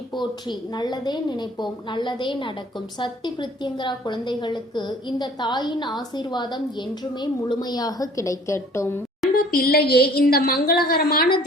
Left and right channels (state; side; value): normal; both; correlation 0.52